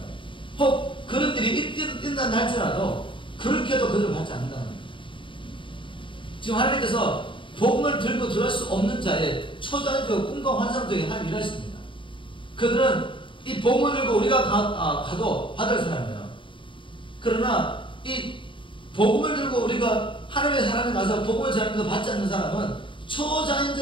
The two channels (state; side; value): late; right; 0.24 ms